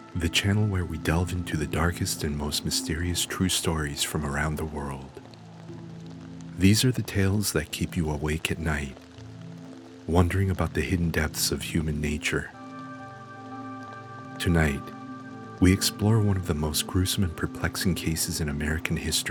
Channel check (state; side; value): identical; both; correlation 1.00